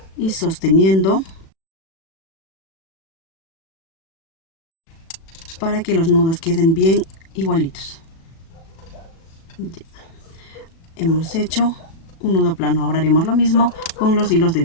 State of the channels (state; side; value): late; right; 36 ms